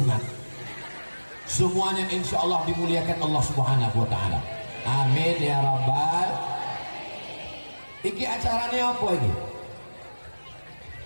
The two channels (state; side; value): inverted; both; correlation -1.00